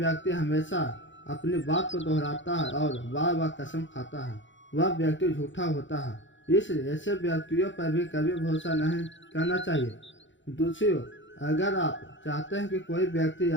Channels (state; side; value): late; right; 0.54 ms